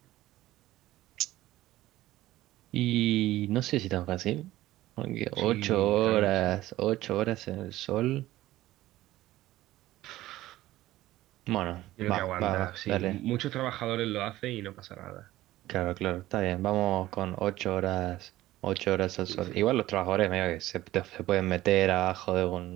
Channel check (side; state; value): left; quieter; 15.9 dB